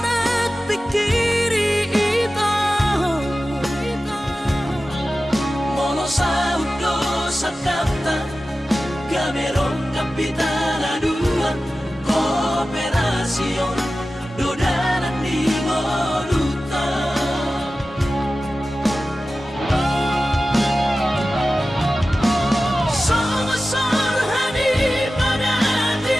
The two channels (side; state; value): both; normal; correlation 0.95